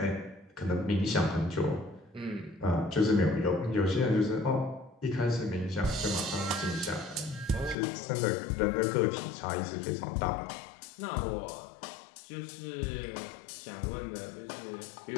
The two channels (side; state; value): right; drops out; at 7.8 s